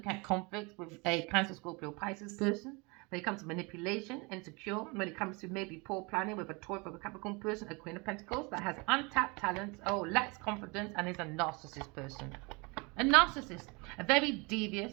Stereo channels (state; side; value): quieter; left; 28.4 dB